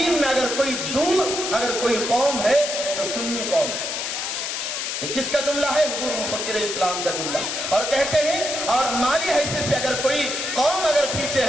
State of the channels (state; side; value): noise; left; hiss, 3 dB below the sound